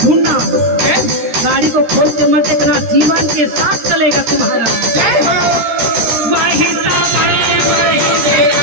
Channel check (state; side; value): late; left; 13 ms